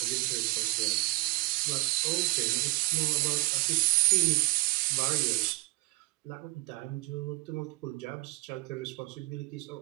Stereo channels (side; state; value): left; quieter; 21.6 dB